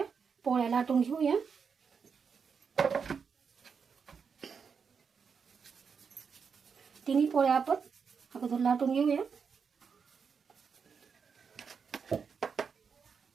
पोळ्या लाटून घेऊया. तिन्ही पोळ्या आपण अगोदर लाटून घेऊया.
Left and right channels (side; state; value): left; quieter; 6.1 dB